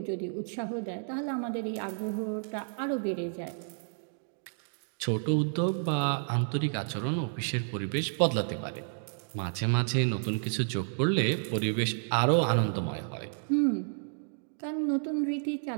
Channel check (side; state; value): left; silent; digital silence